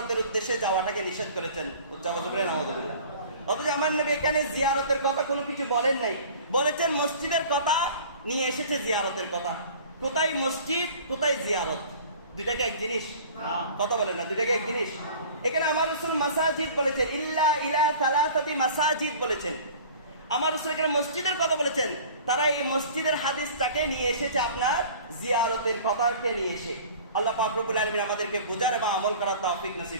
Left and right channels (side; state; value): both; inverted; correlation -0.44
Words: উদ্দেশ্যে যাওয়াটাকে নিষেধ করেছেন। নাউযুবিল্লাহ। অথচ আমার নবী এখানে জিয়ারতের কথা কোনো কিছু বলেন নাই, বলেছেন মসজিদের কথা, নিয়ে এসেছে জিয়ারতের কথা। কোথায় মসজিদ, কোথায় জিয়ারত? দুইটাকে এক জিনিস? কথা বলেন না, দুইটাকে এক জিনিস। এখানে আমার রাসূল মাসাজিদ বলেছেন, ইল্লা ইলা সালাসাতি মাসাজিদ বলেছেন। আমার রাসূল এখানে মসজিদের কথা বলেছেন, তারা এই মসজিদের হাদিসটাকে নিয়ে এসেছে আপনার জিয়ারতের কথাকে নিয়ে এসে। আল্লাহ পাক রব্বুল আলামিন আমাদেরকে বুঝার এবং আমল করার তৌফিক